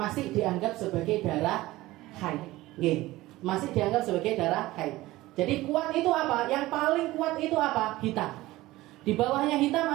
dianggap sebagai darah haid. Masih dianggap sebagai darah haid. Jadi kuat itu apa? Yang paling kuat itu apa? Hitam. Di bawahnya hitam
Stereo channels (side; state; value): left; quieter; 17.9 dB